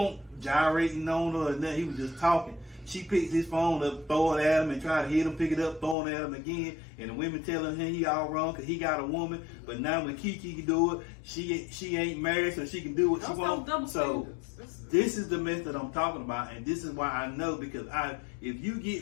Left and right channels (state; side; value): drops out; right; at 6.0 s